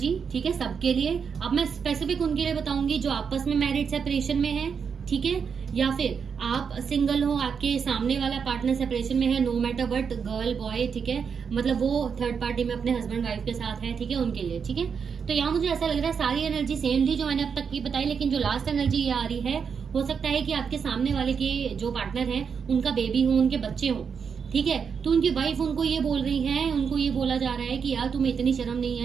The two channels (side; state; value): left; quieter; 6.4 dB